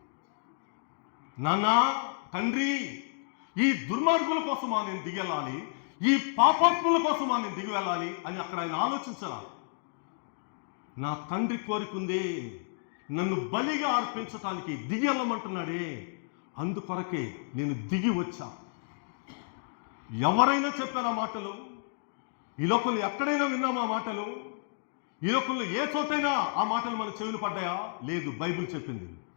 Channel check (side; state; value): right; silent; digital silence